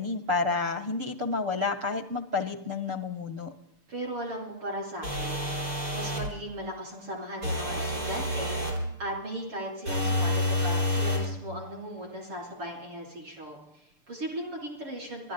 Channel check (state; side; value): late; left; 6.8 ms